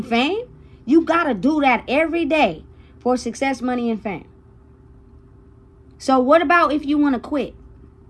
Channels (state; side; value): identical; both; correlation 1.00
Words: fame, you gotta do that every day for success, money, and fame. So what about if you want to quit?